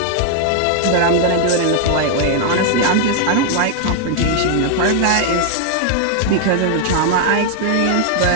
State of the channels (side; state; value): both; different; correlation 0.00